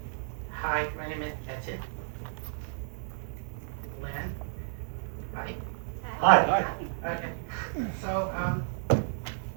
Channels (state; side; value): silent; left; 57 dB below the other